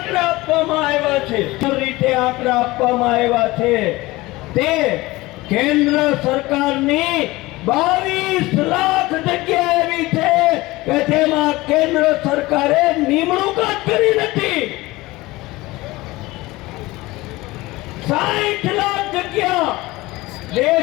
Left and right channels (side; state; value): right; quieter; 20.1 dB